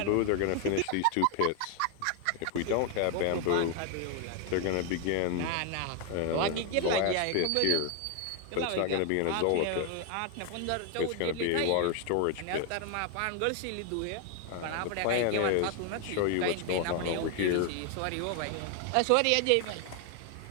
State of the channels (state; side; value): different; both; correlation 0.01